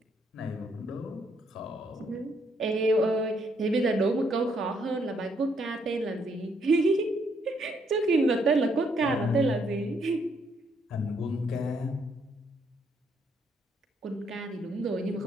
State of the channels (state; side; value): normal; both; correlation 0.72